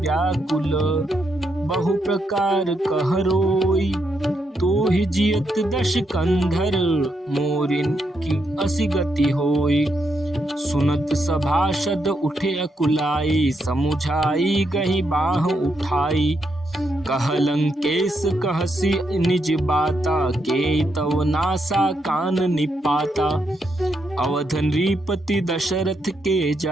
बहु प्रकार कह रोई। तो ही जियत दश कंधर मोरिन की असी गति होई। सुनत सभासद उठे अकुलाई समुझाई गही बाह उठाई। कह लंकेश कहसी निज बाता के तव नासा कान निपाता। अवध नृपति दशरथ के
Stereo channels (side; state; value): both; normal; correlation 0.80